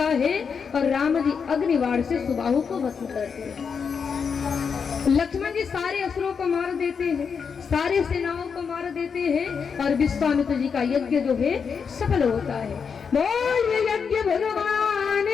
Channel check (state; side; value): quieter; right; 6.2 dB